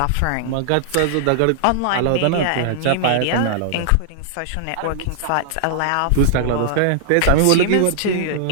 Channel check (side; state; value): both; different; correlation -0.01